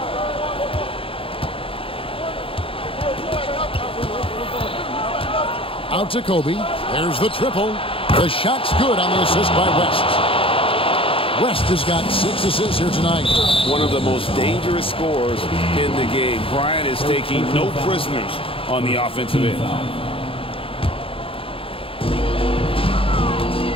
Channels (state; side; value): late; right; 0.26 ms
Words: Out to Kobe. There's the triple. The shot's good on the assist by West. West has got 6 assists here tonight. One of the most dangerous scorers in the game. Bryant is taking no prisoners on the offensive end.